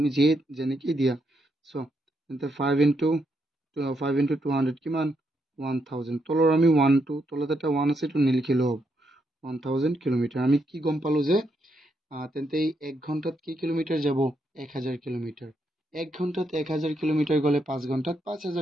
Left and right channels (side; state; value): both; normal; correlation 0.79